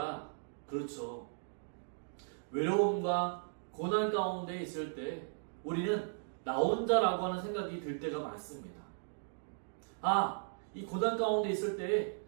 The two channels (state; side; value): silent; left; digital silence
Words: 그렇죠. 외로움과 고난 가운데 있을 때 우리는 나 혼자라고 하는 생각이 들 때가 많습니다. 이 고난 가운데 있을 때